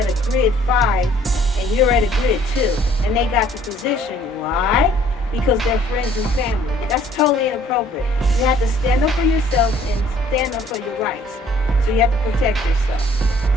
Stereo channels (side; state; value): both; normal; correlation 0.58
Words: a grid 5 and you're at a grid 2 and they got the position, why? Because they're friends and family. That's totally inappropriate. You have to stand up for yourself and stand up for your rights. So you have to protect yourself.